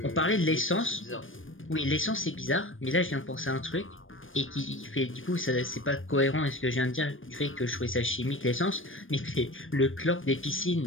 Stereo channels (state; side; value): late; right; 0.58 ms